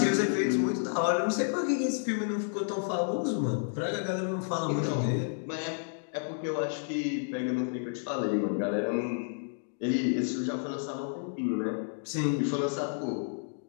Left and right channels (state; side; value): silent; right; digital silence